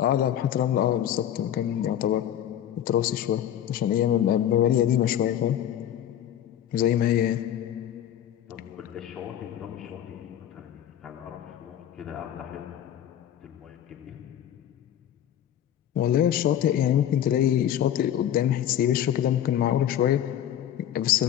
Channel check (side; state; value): right; quieter; 10.8 dB